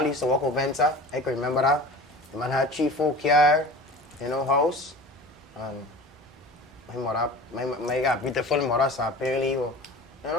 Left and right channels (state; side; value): normal; both; correlation 0.38